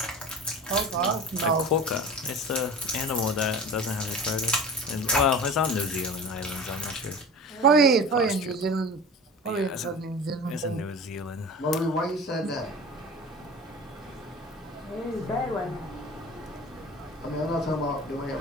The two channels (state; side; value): normal; both; correlation 0.36